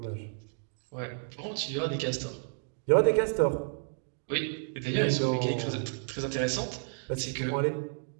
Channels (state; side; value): silent; left; digital silence